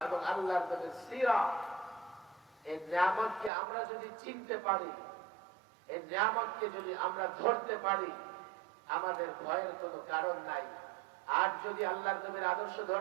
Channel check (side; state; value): left; drops out; at 3.5 s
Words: এবং আল্লাহর নবীর সিরাত, এই নিয়ামতকে আমরা যদি চিনতে পারি, এই নিয়ামতকে যদি আমরা ধরতে পারি, আমাদের ভয়ের কোনো কারণ নাই। আর যদি আল্লাহর নবীর আদর্শ